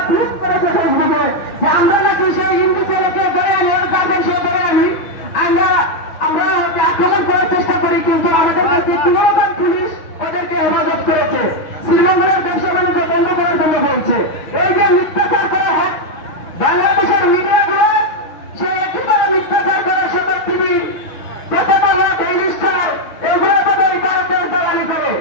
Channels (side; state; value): right; late; 6.1 ms